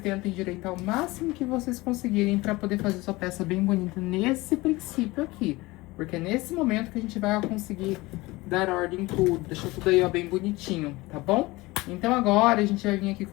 endireitar o máximo que vocês conseguirem pra poder fazer sua peça bem bonita nesse princípio aqui. Porque é nesse momento que a gente vai conseguir dar ordem em tudo, deixar tudo aí, ó, bem bonitinho, tá bom? Então agora a gente vai vir aqui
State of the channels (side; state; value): right; quieter; 21.2 dB